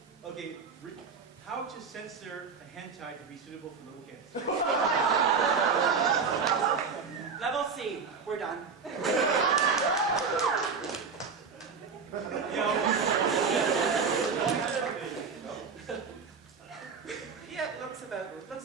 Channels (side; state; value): left; quieter; 5.4 dB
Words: Okay, how to censor a hentai to be suitable for little kids. Level C. We're done. Yeah, it looks